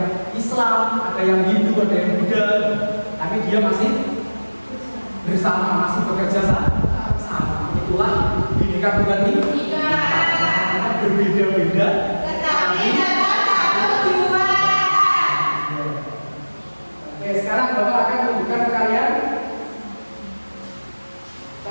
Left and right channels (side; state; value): both; inverted; correlation -1.00